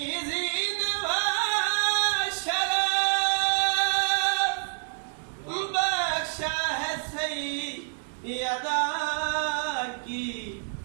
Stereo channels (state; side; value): silent; left; digital silence